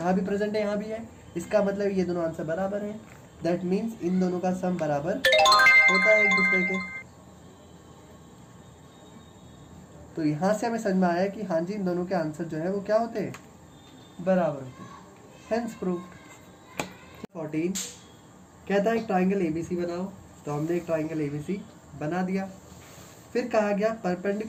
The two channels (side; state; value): both; identical; correlation 1.00